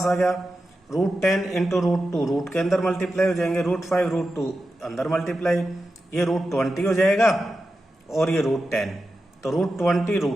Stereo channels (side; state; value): both; normal; correlation 0.91